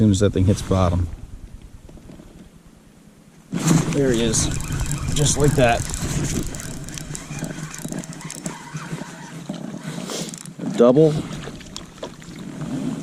as that thing hits bottom. There he is, just like that. A double.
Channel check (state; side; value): identical; both; correlation 1.00